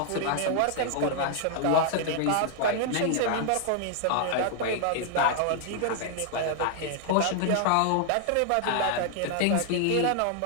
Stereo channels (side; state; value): both; different; correlation -0.01